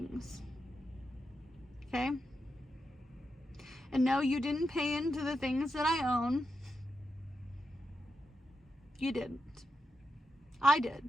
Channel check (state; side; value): normal; both; correlation 0.87